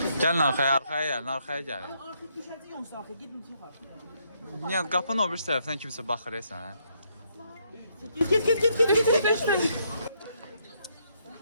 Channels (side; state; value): both; inverted; correlation -0.73